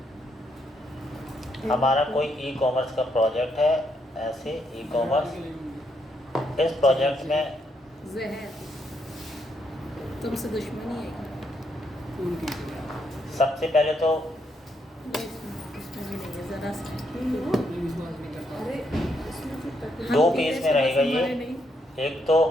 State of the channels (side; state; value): both; normal; correlation 0.76